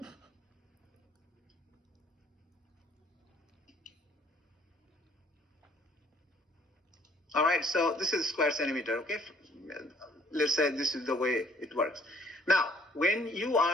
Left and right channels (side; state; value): both; normal; correlation 0.60